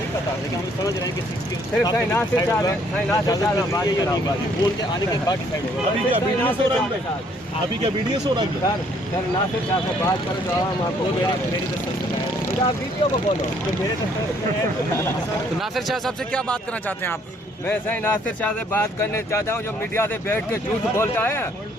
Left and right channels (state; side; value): normal; both; correlation 0.64